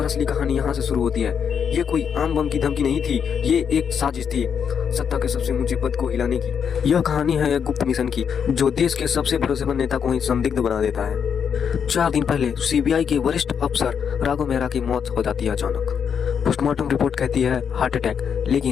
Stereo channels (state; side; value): quieter; right; 7.3 dB